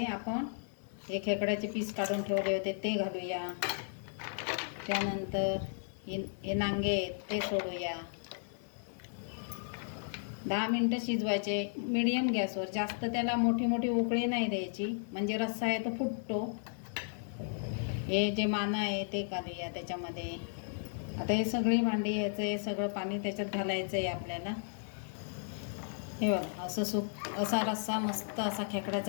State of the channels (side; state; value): right; silent; digital silence